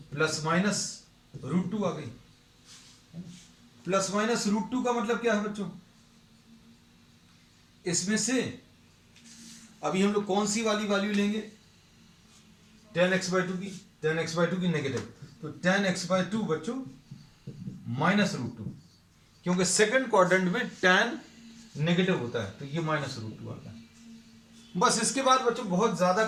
±√2 आ गई। ±√2 का मतलब क्या है बच्चों, इसमें से अभी हम लोग कौन सी वाली वैल्यू लेंगे, tan x/2 की नेगेटिव, तो tan x/2 बच्चों -√2, क्योंकि सेकंड क्वाड्रेंट में tan नेगेटिव होता है, तो ये -√2 आता है। बस इसके बाद बच्चों बहुत ज्यादा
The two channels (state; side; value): identical; both; correlation 1.00